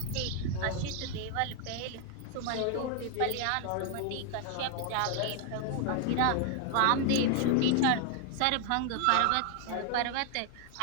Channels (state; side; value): different; both; correlation 0.00